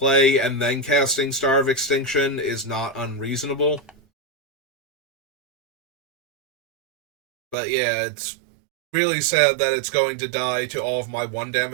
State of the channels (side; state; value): left; drops out; at 7.6 s